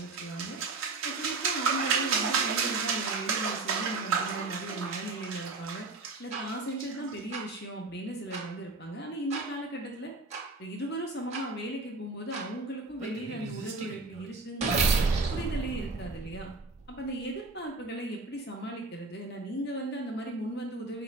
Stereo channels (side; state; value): left; quieter; 3.6 dB